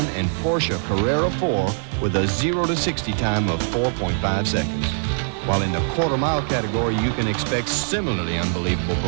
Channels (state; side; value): silent; left; digital silence